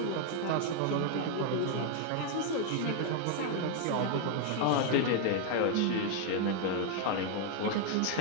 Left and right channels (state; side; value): different; both; correlation 0.00